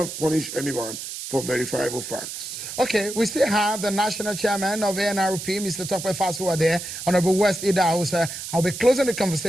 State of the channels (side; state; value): right; noise; hiss, 8 dB below the sound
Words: punish anyone for verifiable facts. Okay, we still have the national chairman of ANRP, Mr. Tokwe Fasuwa there, Honorable West Idahosa. I'll be closing the